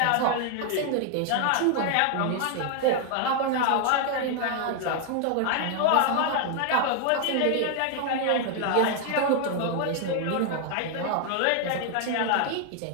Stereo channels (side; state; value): both; different; correlation 0.00